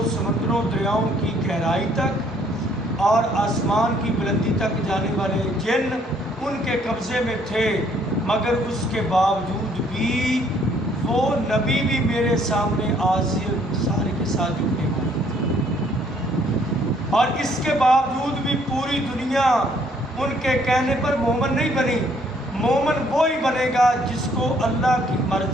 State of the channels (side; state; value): both; normal; correlation 0.64